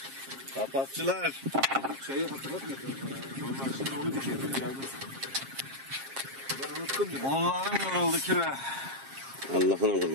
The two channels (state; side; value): late; left; 7.5 ms